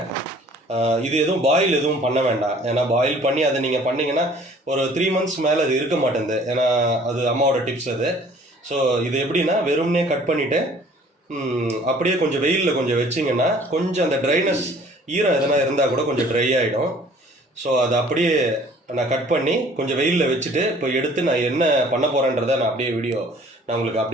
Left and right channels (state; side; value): normal; both; correlation 0.53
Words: இது எதுவும் பாயில் எதுவும் பண்ண வேண்டாம். ஏன்னா பாயில் பண்ணி அதை நீங்கள் பண்ணிங்கன்னா ஒரு 3 months மேலே அது இருக்க மாட்டேங்குது. ஏன்னா அது அம்மாவோட டிப்ஸ் அது. ஸோ இது எப்படின்னா வெறும்னே கட் பண்ணிவிட்டு அப்படியே கொஞ்சம் வெயிலில் கொஞ்சம் வச்சிங்கன்னா கொஞ்சம் அந்த ட்ரைனஸ் ஈரம் எதனா இருந்தால் கூட கொஞ்சம் ட்ரை ஆகிடும். ஸோ அதை அப்படியே நான் கட் பண்ணி கொஞ்சம் வெயிலில் வச்சுட்டு இப்போ எடுத்து நான் என்ன பண்ண போகிறேன்றதை நான் அப்படியே வீடியோ நான் உங்களுக்கு